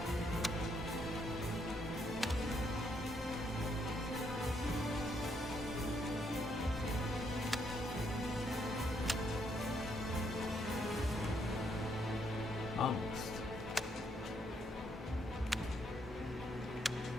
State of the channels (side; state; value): both; normal; correlation 0.74